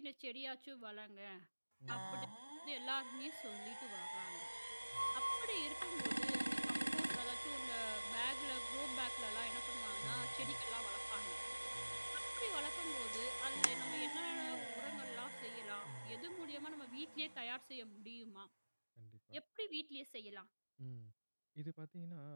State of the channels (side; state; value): both; inverted; correlation -1.00